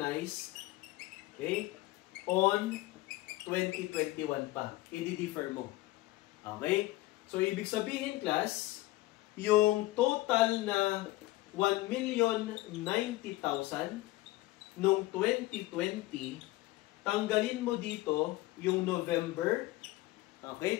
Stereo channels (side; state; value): right; quieter; 18.4 dB